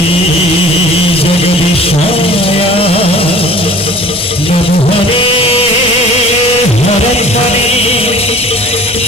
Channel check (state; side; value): noise; left; hum, 22 dB below the sound